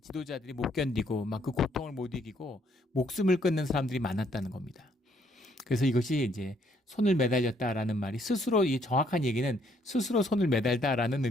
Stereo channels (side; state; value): both; normal; correlation 0.68